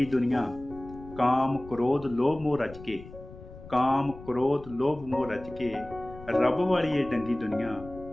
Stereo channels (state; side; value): noise; left; rumble, 17 dB below the sound